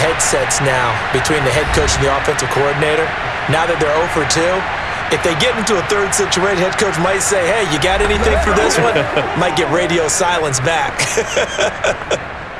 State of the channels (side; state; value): both; identical; correlation 1.00